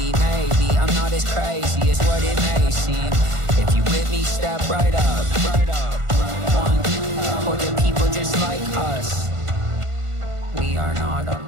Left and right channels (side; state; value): left; late; 1.5 ms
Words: Maybe I'm not as crazy as what it may seem. If you with me, step right up. One for the people just like us. We are not